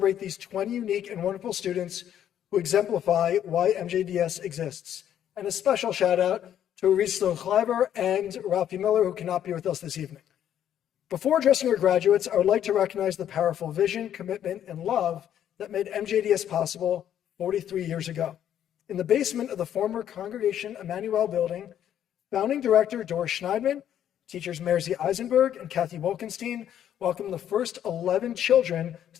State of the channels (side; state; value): right; quieter; 10.3 dB